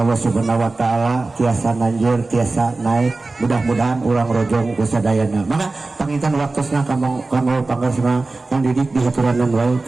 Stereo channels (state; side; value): quieter; left; 3.4 dB